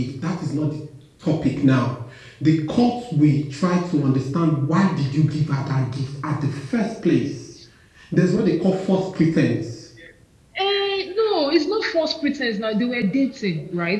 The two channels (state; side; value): identical; both; correlation 1.00